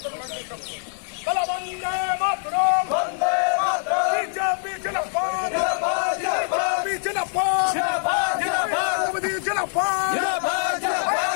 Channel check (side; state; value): right; silent; 59 dB below the other